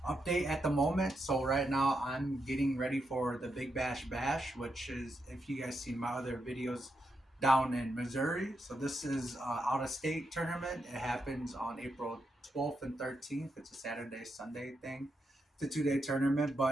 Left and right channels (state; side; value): normal; both; correlation 0.83